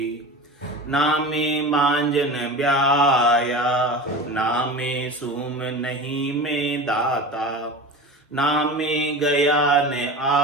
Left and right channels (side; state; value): both; normal; correlation 0.31